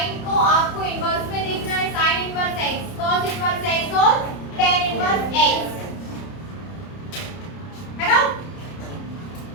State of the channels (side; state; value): right; late; 30 ms